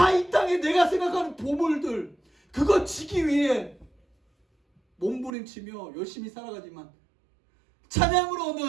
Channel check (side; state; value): left; drops out; at 5.3 s